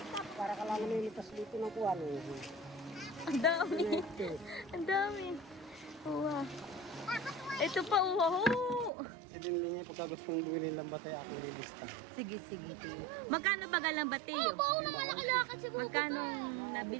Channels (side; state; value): left; drops out; at 8.9 s